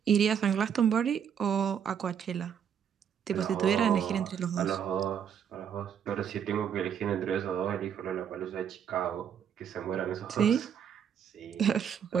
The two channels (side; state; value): left; quieter; 8.2 dB